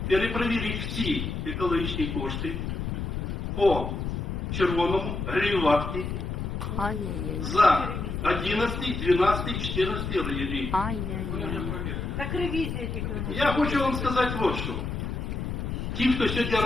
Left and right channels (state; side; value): noise; left; rumble, 3 dB below the sound